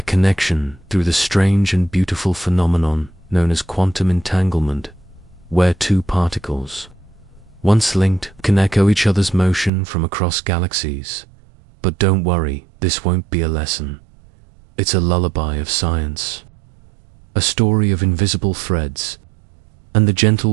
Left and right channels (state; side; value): drops out; left; at 9.7 s